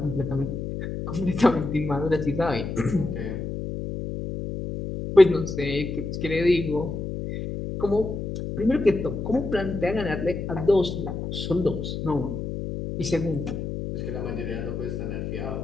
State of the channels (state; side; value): noise; left; hum, 5 dB below the sound